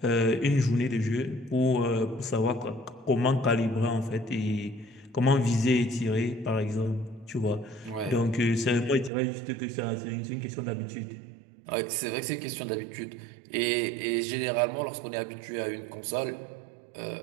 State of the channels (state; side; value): drops out; left; at 9.1 s